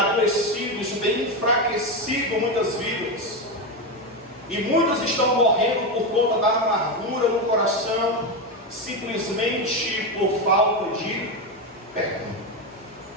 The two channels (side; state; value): both; normal; correlation 0.12